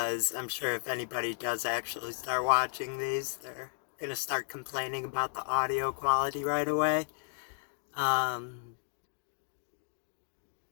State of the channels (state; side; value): silent; right; digital silence